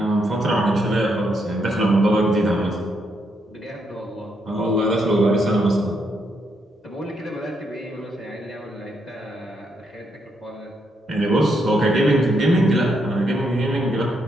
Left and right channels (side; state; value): both; normal; correlation 0.78